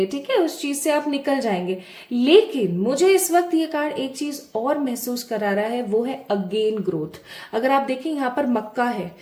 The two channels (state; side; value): identical; both; correlation 1.00